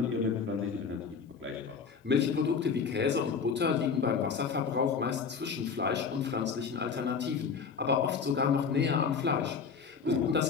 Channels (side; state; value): right; quieter; 5.8 dB